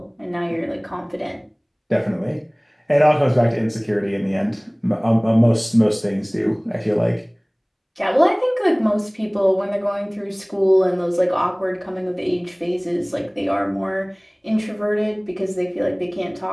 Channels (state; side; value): identical; both; correlation 1.00